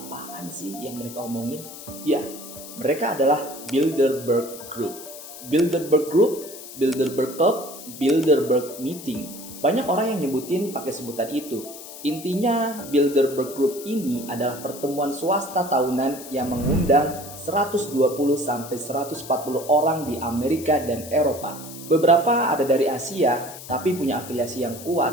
sih yang mereka omongin? Ya, mereka adalah Bilderberg Group. Bilderberg Group, Bilderberg Thought, Bilderberg Meeting. Banyak orang yang nyebutin pakai sebutan itu. Intinya, Bilderberg Group ini adalah pertemuan swasta tahunan yang mengundang 120-140 orang di Amerika dan Eropa. Beberapa ada dari Asia, tapi punya afiliasi yang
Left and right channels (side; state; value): left; noise; hiss, 14 dB below the sound